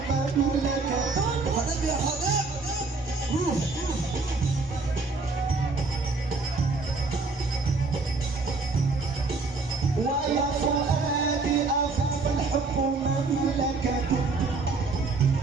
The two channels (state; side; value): quieter; left; 3.9 dB